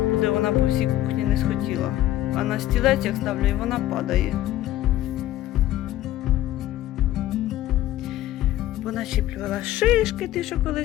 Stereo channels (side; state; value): right; quieter; 14.1 dB